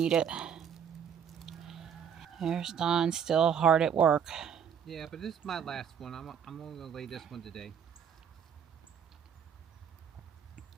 it. There's Dawn still hard at work. Yeah, but this is my last one. I'm only going to lay this one today.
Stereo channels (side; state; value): left; quieter; 7.8 dB